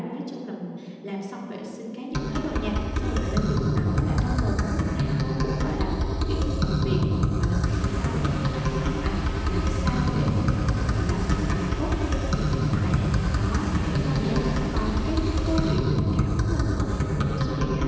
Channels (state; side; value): identical; both; correlation 1.00